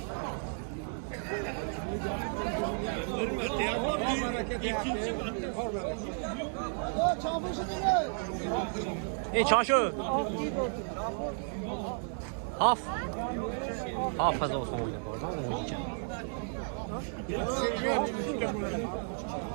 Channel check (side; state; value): left; silent; 56 dB below the other